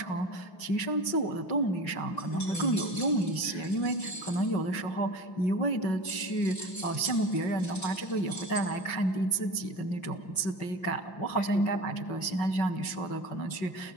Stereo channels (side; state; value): right; late; 5.4 ms